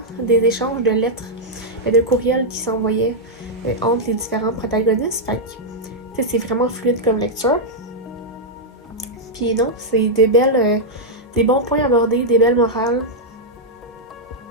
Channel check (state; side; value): normal; both; correlation -0.06